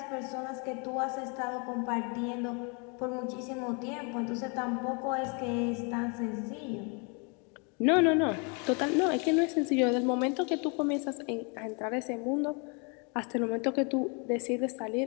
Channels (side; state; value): right; quieter; 34.1 dB